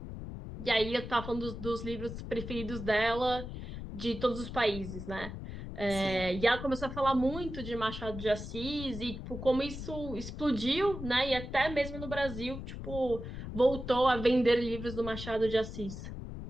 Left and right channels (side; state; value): left; noise; rumble, 8 dB below the sound